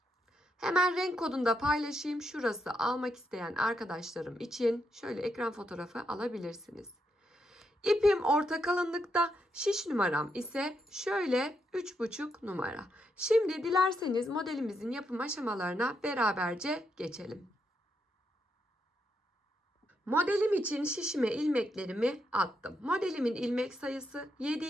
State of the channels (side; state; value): both; normal; correlation 0.80